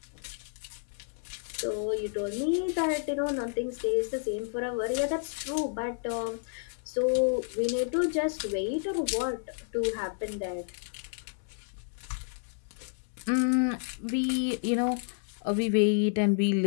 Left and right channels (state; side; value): silent; right; digital silence